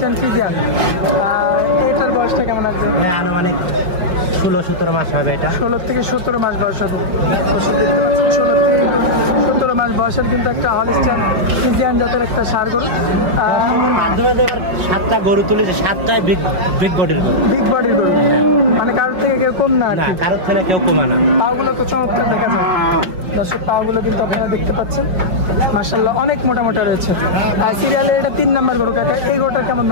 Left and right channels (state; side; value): late; left; 5.4 ms